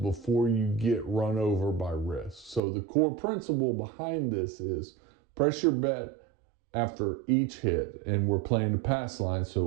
you get run over by risk. So the core principle behind this is press your bet after each hit, and we're playing the pass line,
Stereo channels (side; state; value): left; drops out; at 2.6 s